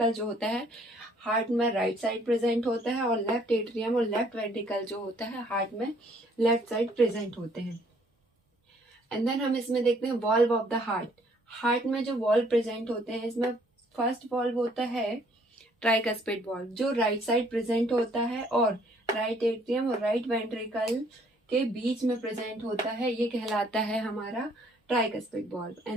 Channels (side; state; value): both; normal; correlation 0.63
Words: जो होता है हार्ट में राइट साइड प्रेजेंट होता है, और लेफ्ट एट्रियम और लेफ्ट वेंट्रिकल जो होता है हार्ट में लेफ्ट साइड प्रेजेंट होते हैं। एंड देन हम इसमें देखते हैं valve of the heart. Heart में जो वॉल्व प्रेजेंट होते हैं इसमें फर्स्ट वॉल्व होता है ट्राइकस्पिड वॉल्व, जो राइट साइड प्रेजेंट होता है और राइट एट्रियम और राइट वेंट्रिकल के बीच में प्रेजेंट होता है। ये कहलाता है हमारा ट्राइकस्पिड वॉल्व।